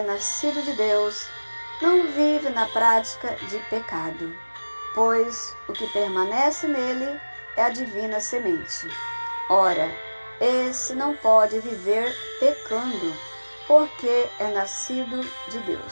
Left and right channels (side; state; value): both; inverted; correlation -1.00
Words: nascido de Deus não vive na prática de pecado, pois o que permanece nele é a divina semente. Ora, esse não pode viver pecando, porque é nascido de